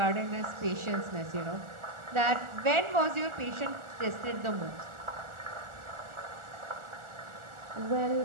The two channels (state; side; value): late; left; 1.4 ms